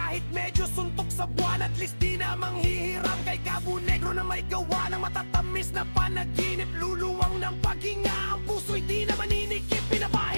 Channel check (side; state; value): both; inverted; correlation -1.00